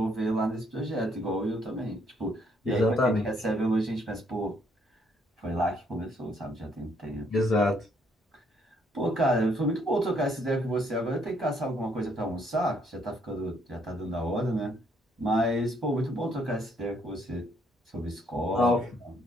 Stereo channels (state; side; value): normal; both; correlation 0.69